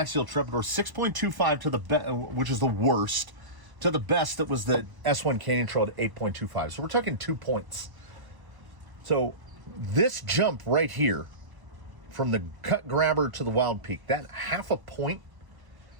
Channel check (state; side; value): late; left; 1.0 ms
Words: trepidor, 6.25 to the which is the worst, to the best that was the S1 Canyon Trail at 8.25. So we're talking 2 points. So this jump right here from the cut grabber to the Wild Peak, that 0.5 point,